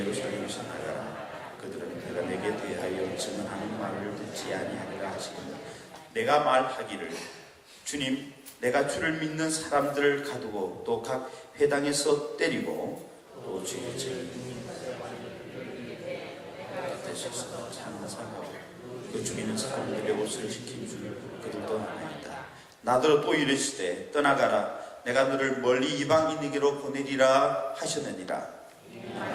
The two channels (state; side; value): identical; both; correlation 1.00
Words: 나가라. 그들은 내가 내게 대하여 증언하는 말을 듣지 아니하리라 하시거늘 내가 말하기를 주님 내가 주를 믿는 사람들을 가두고 또 각 회당에서 때리고 또 주의 곁에서 찬송하고 그 죽이는 사람들의 옷을 지킨 줄 그들도 아나이다. 나더러 또 이르시되 떠나가라. 내가 너를 멀리 이방인에게로 보내리라 하셨느니라.